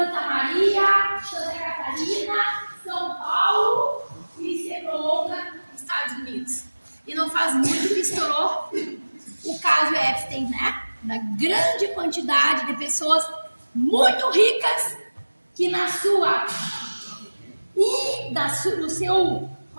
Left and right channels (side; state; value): both; inverted; correlation -1.00